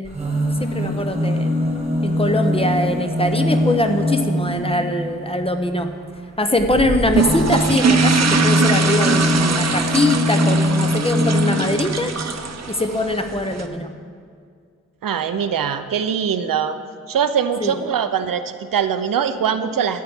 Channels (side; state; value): both; normal; correlation 0.50